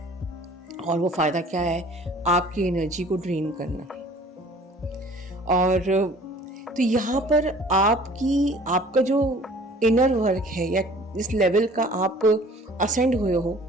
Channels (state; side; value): normal; both; correlation 0.50